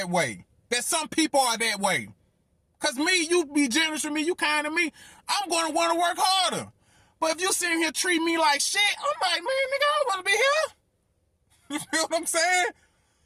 way. That some people are that way. Cause me, you be generous with me, you kind to me, I'm gonna wanna work harder. But if you sitting here treat me like shit, I'm like, man, nigga, I don't wanna be here. You feel what I'm saying?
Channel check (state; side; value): identical; both; correlation 1.00